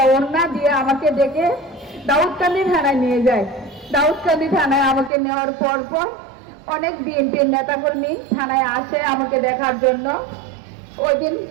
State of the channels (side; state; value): left; drops out; at 5.1 s